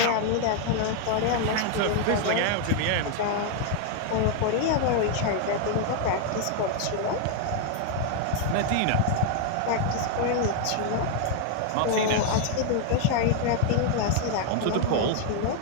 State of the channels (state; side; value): different; both; correlation 0.00